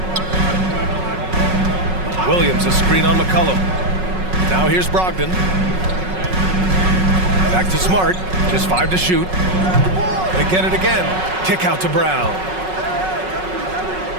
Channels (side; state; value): left; late; 5.4 ms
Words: Williams a screen on McCollum. Now here's Brogdon. Back to Smart. Just 5 to shoot. They get it again. Kick out to Brown.